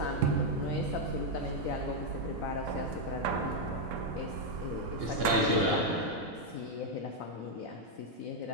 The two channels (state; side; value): normal; both; correlation 0.00